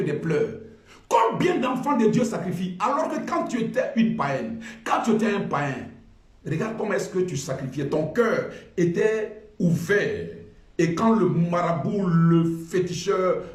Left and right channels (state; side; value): identical; both; correlation 1.00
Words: pleurs. Combien d'enfants de Dieu sacrifient alors que quand tu étais une païenne, quand tu étais un païen, regarde comment est-ce que tu sacrifiais, ton cœur était ouvert. Et quand le marabout, le féticheur,